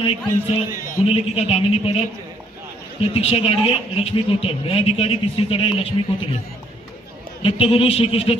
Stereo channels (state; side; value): normal; both; correlation 0.66